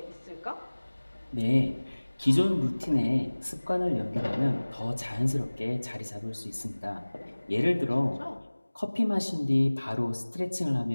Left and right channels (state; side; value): inverted; both; correlation -1.00